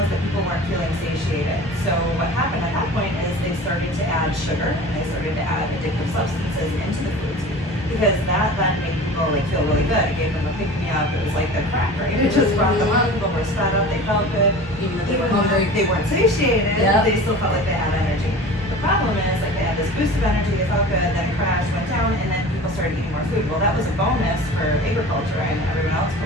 that people weren't feeling satiated. So what happened at that point is they started to add sugar and they started to add addictive substances into the foods, because that then made people like feel really good. It gave them a pick me up. It was like the crack, right? It just brought them up. People were sped up. They felt good. even if they Even were hungry. though they weren't satiated, Yep. they still felt like they had energy. The problem is, like, they had this boost of energy, they felt good, then it crashed, went down, and then people started eating more food. Well, that was a bonus for agriculture and everyone else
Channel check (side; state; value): both; normal; correlation 0.38